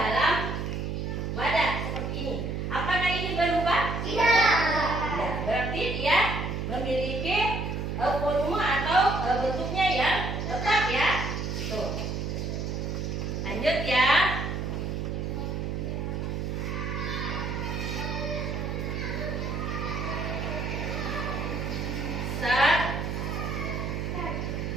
wadah seperti ini?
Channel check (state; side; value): noise; right; hum, 2 dB below the sound